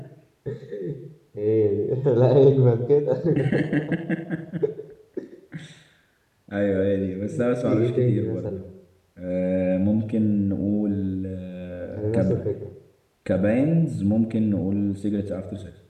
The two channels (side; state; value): both; identical; correlation 1.00